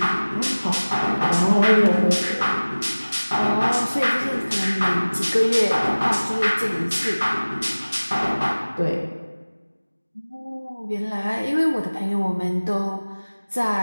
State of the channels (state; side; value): inverted; both; correlation -1.00